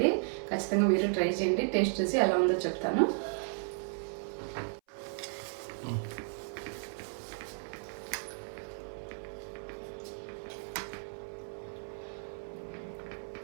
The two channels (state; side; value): silent; left; 55 dB below the other